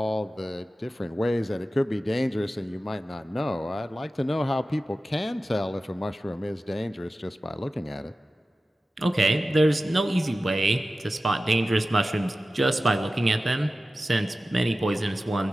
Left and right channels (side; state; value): both; normal; correlation 0.95